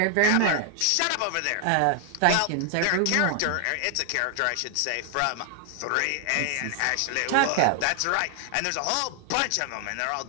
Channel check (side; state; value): both; different; correlation 0.00